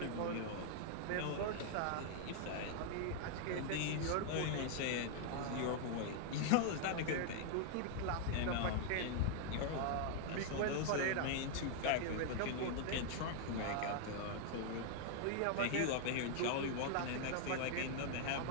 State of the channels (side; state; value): both; different; correlation -0.01